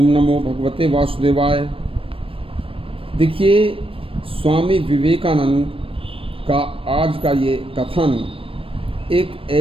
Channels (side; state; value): left; late; 0.26 ms